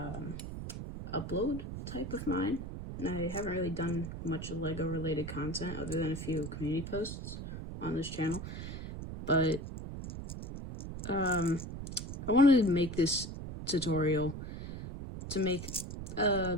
upload type of mine, and I haven't really done much Lego related content other than a few community posts on this channel, but I wanted to make this tutorial to make a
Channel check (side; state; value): right; noise; rumble, 8 dB below the sound